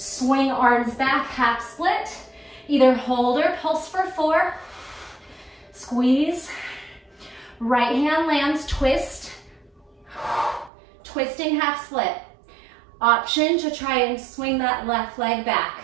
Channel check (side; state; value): left; drops out; at 10.7 s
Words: arms back, half split. Either hold or pulse for 4. Squeeze. Right hand lands, twist. Twisting half split. Option to try and swing that left leg back.